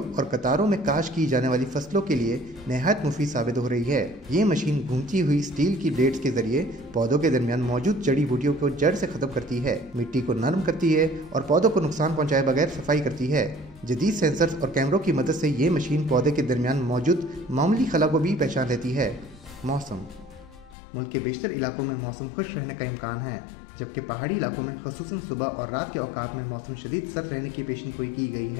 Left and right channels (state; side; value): drops out; right; at 20.8 s